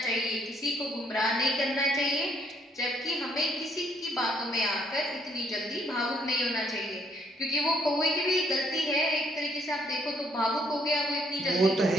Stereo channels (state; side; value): normal; both; correlation 0.68